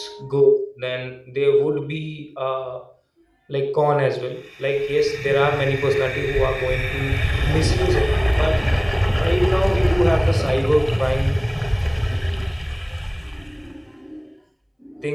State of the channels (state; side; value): identical; both; correlation 1.00